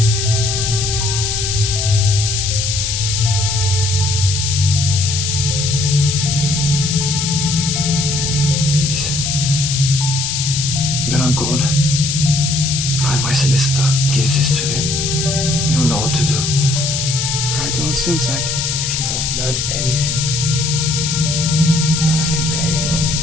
When I'm gone, find my solicitor, give this to him. You'll know what to do. I don't think I can. If you have learned anything the past few days,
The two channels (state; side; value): noise; left; hiss, 1 dB below the sound